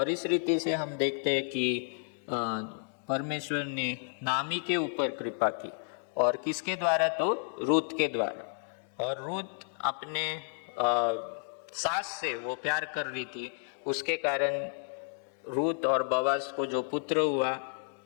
इस रीति से हम देखते हैं कि परमेश्वर ने नामी के ऊपर कृपा की, और किसके द्वारा? तो रूत के द्वारा। और रूत अपने सास से वो प्यार कर रही थी, उसके कारण रूत और बवास को जो पुत्र हुआ,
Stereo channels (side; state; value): right; silent; digital silence